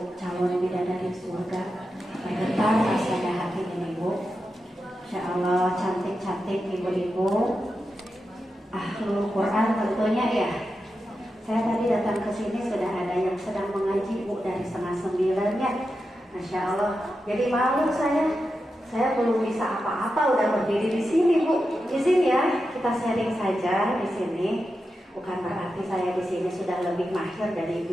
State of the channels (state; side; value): normal; both; correlation 0.89